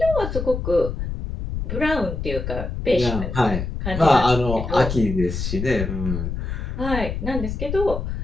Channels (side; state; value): left; noise; rumble, 4 dB below the sound